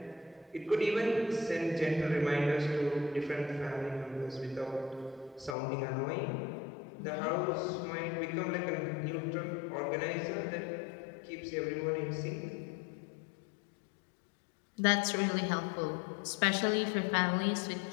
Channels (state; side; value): drops out; right; at 5.6 s